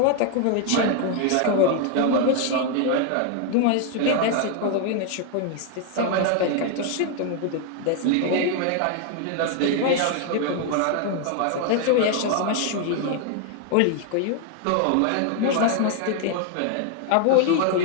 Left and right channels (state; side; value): different; both; correlation 0.00